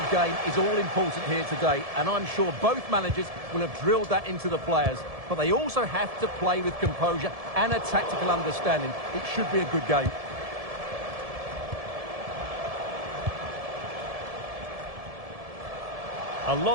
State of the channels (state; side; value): late; left; 1.7 ms